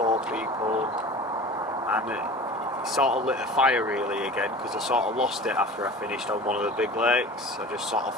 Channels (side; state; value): both; normal; correlation 0.38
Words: people, and it sort of lit a fire really again, because I sort of lost it after I finished on one of the big lakes. I just sort of